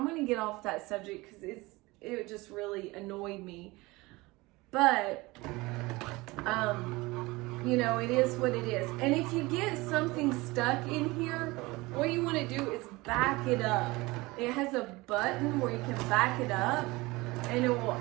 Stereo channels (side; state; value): left; quieter; 22.1 dB